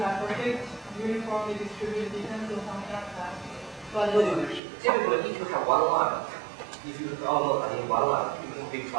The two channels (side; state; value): left; drops out; at 4.6 s